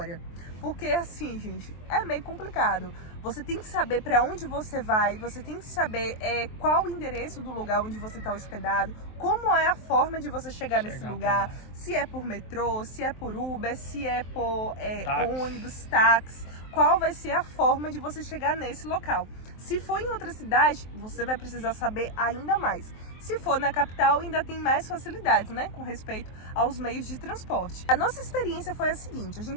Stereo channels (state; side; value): late; right; 23 ms